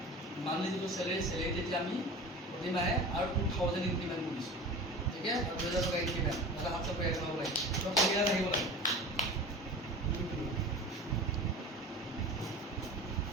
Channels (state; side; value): normal; both; correlation 0.36